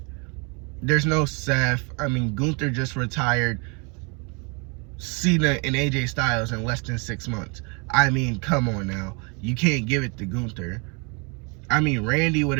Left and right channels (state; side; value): quieter; left; 32.8 dB